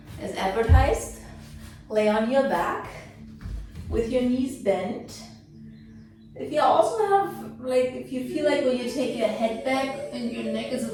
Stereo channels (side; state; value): both; identical; correlation 1.00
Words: As advertised, lay on your back with your knees bent. If you also have, if you feel like when you take your head back and your neck is